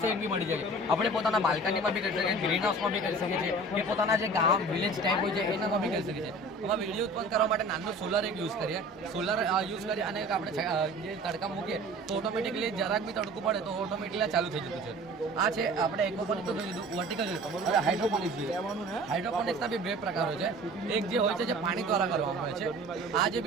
સેવિંગ બી મળી જાય. આપણે પોતાના બાલ્કનીમાં બી કરી શકીએ, ગ્રીન હાઉસમાં બી કરી શકીએ છીએ, કે પોતાના જે ગામ વિલેજ ટાઈપ હોય છે એનામાં બી કરી શકીએ છીએ. આમાં વીજળી ઉત્પન્ન કરવા માટે નાનું સોલર એક યુઝ કરીએ. સોલર યુઝ કરી અને આપણે જે તડકા મૂકીએ તો ઓટોમેટિકલી જરાક બી તડકું પડે તો ઓટોમેટિકલી ચાલુ થઈ જતું છે. આ છે આપણે એક્વાપોનિક તો જોઈ લીધું, વર્ટિકલ જોયું. હવે હાઇડ્રોપોનિક્સ જોઈએ. હાઇડ્રોપોનિક્સના બી 2 પ્રકારો છે. એક જે હોય છે જે પાણી દ્વારા કરવામાં આવે છે. આ જે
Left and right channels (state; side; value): normal; both; correlation 0.43